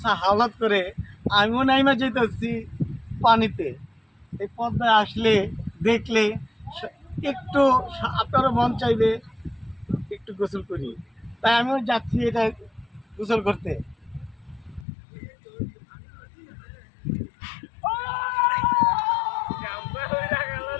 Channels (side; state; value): right; drops out; at 14.9 s